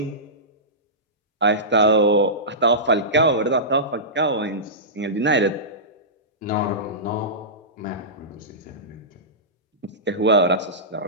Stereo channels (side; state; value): both; normal; correlation -0.18